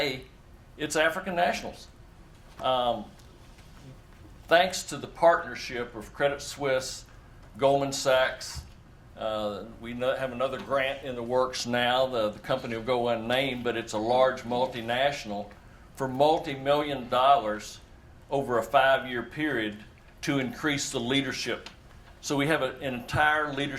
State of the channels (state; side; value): identical; both; correlation 1.00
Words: it's African nationals. Thanks to the partnership of Credit Suisse, Goldman Sachs, we have another grant in the works now. The company will go unnamed, but it's a large multinational for multi-million dollars over a 5-year period to increase the leadership. So we have an entire